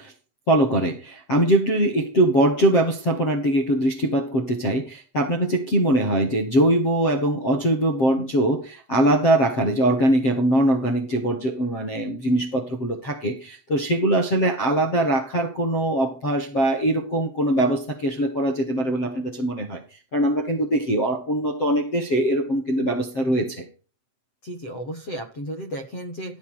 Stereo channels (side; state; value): right; late; 7.8 ms